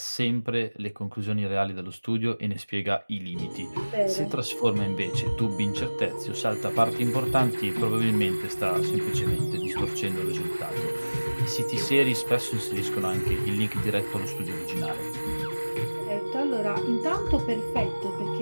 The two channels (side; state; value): both; inverted; correlation -1.00